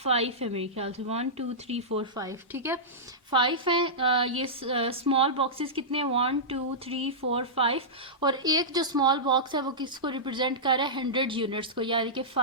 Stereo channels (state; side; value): normal; both; correlation -0.14